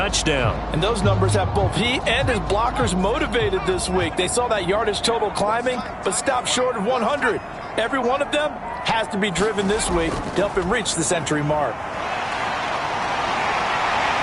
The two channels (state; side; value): identical; both; correlation 1.00